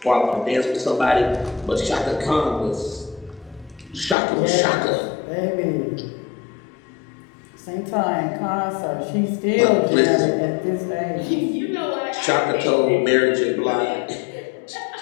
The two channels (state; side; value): drops out; right; at 4.2 s